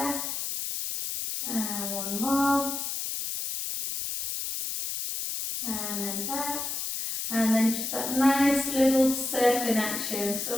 and 1 more, and then back, and then just that nice little circling action, so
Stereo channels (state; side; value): noise; left; hiss, 4 dB below the sound